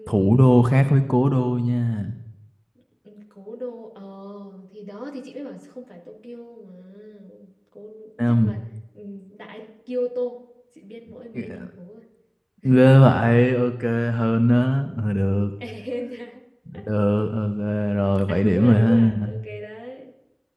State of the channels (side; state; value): both; identical; correlation 1.00